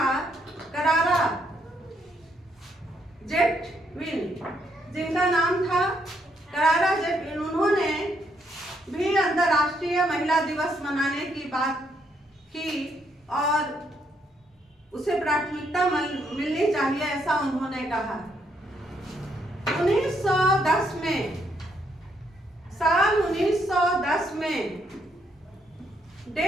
करारा जेटविन, उन्होंने भी अंतर्राष्ट्रीय महिला दिवस मनाने की बात की और उसे प्राथमिकता मिलनी चाहिए, ऐसा उन्होंने कहा। 1910 में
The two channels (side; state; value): both; normal; correlation 0.74